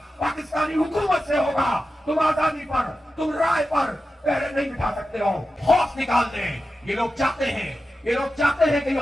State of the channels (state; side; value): normal; both; correlation 0.92